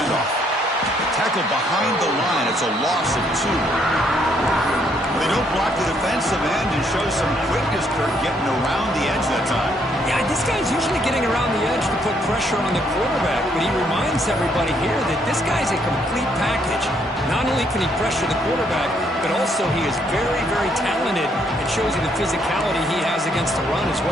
Tackled behind the line. It's a loss of 2. They don't block the defensive end and show some quickness, Kirk, getting around the edge that time. Yeah, this guy's usually getting around the edge to put pressure on the quarterback, but he reminds everybody here that this guy's a complete package. Not only can he pressure the quarterback, but also he is very, very talented and shows you the physicality he has against the run as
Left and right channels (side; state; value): both; normal; correlation 0.70